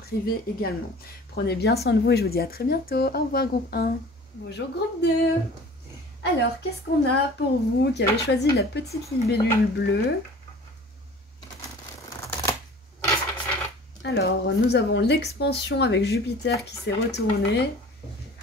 également. Prenez bien soin de vous et je vous dis à très bientôt. Au revoir groupe 1. Bonjour groupe 2. Alors, qu'est-ce qu'on a pour vous qui avez choisi la petite libellule bleue? Alors, nous avons l'expansion avec Jupiter qui s'est retourné.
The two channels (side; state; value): both; normal; correlation 0.45